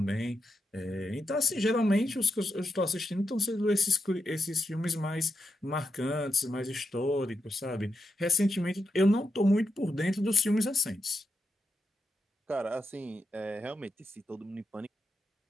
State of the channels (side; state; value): both; normal; correlation 0.85